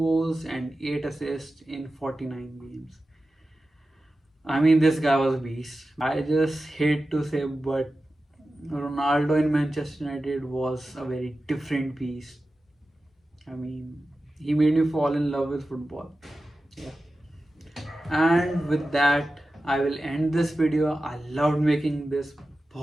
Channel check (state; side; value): normal; both; correlation 0.94